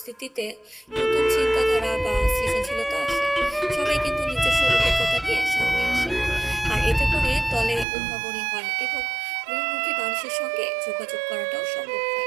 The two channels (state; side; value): drops out; left; at 7.9 s